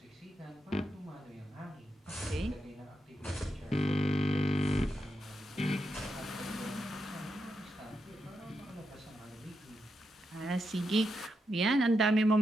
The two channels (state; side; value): normal; both; correlation 0.85